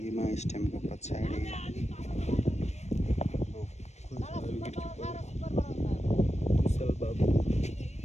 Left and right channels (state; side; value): late; right; 0.32 ms